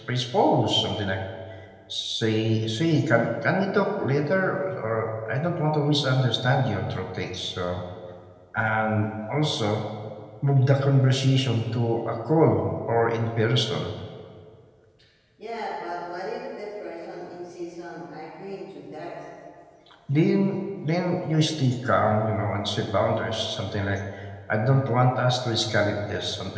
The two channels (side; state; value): both; identical; correlation 1.00